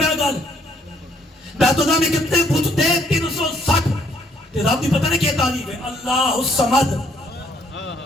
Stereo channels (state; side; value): normal; both; correlation 0.67